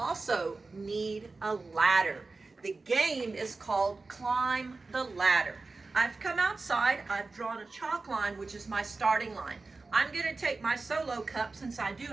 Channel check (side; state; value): left; quieter; 3.7 dB